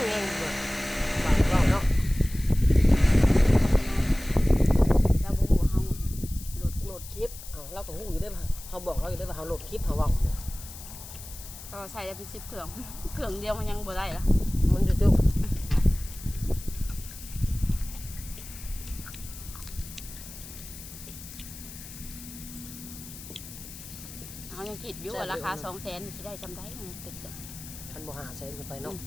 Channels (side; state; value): left; noise; hiss, 14 dB below the sound